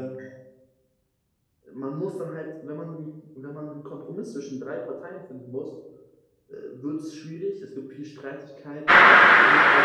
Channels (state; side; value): identical; both; correlation 1.00